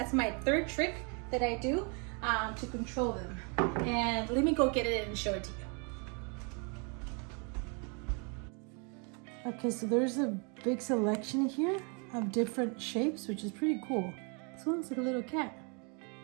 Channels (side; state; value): left; quieter; 35.4 dB